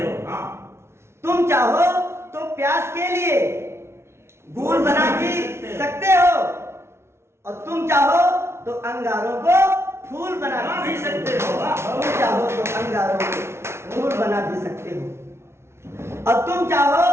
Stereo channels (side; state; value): left; late; 0.13 ms